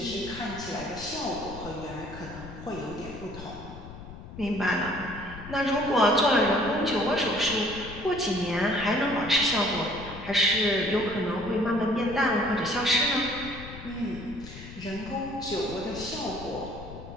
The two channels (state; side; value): noise; left; rumble, 13 dB below the sound